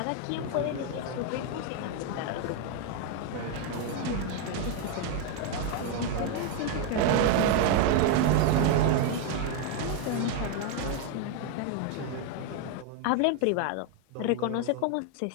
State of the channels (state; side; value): different; both; correlation 0.01